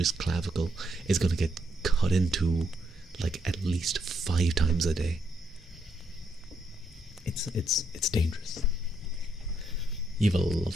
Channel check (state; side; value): normal; both; correlation 0.77